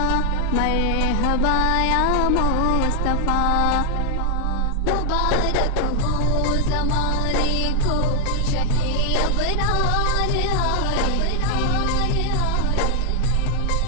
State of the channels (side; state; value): both; different; correlation 0.01